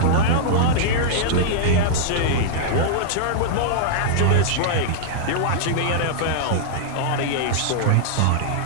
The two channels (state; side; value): different; both; correlation -0.02